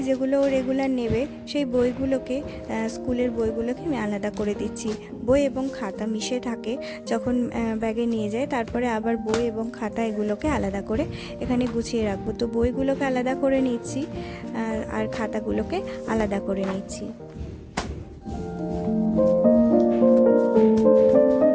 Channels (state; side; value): identical; both; correlation 1.00